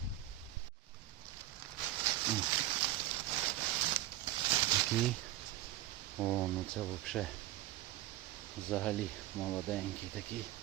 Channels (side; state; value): left; quieter; 14.6 dB